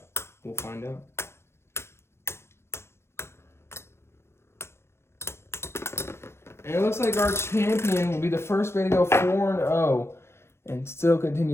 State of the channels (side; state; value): right; late; 0.12 ms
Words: We'll find out. And it looks like our champion will be the first way to go 4-0 and still